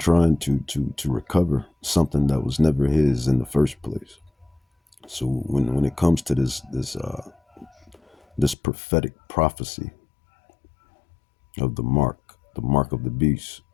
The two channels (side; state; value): right; drops out; at 8.6 s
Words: to recover something that was never his in the first place. So when it comes to this prophetic prophecy of the mark of the beast,